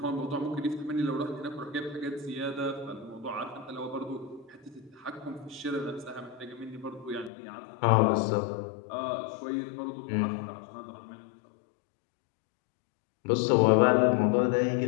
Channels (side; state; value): right; drops out; at 7.3 s